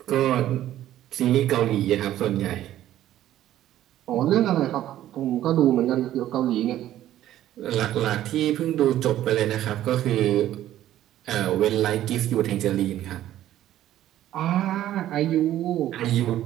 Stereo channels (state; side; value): quieter; left; 12.9 dB